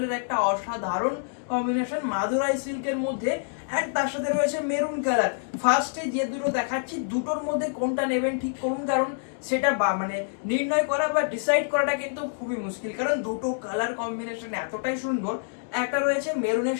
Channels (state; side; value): silent; right; 60 dB below the other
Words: একটা অসাধারণ কম্বিনেশন মাদুরাই সিল্কের মধ্যে, অ্যান্ড তার সাথে রয়েছে মেরুন কালার। ফার্স্টে যে দুটো দেখাচ্ছি দুটোর মধ্যে কোনটা নেবেন ঠিক করুন, কারণ সেটা মানে নির্ণয় করা বা ডিসাইড করাটা কিন্তু খুবই মুশকিল, কারণ দুটো কালার কম্বিনেশন এতটাই সুন্দর। একটা রয়েছে মেরুনের